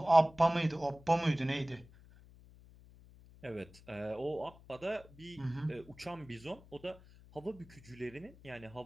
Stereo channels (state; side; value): noise; left; hum, 22 dB below the sound